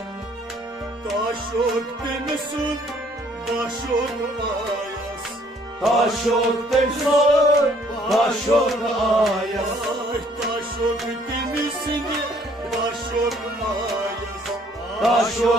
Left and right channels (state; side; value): normal; both; correlation 0.62